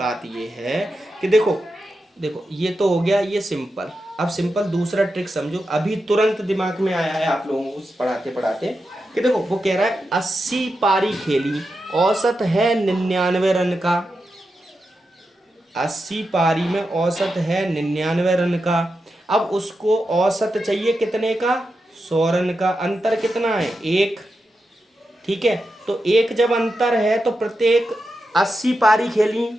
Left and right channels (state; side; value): normal; both; correlation 0.88